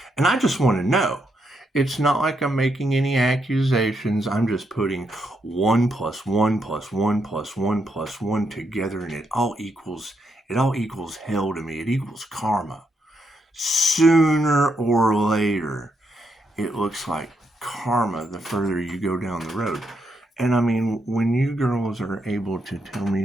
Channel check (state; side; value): normal; both; correlation 0.79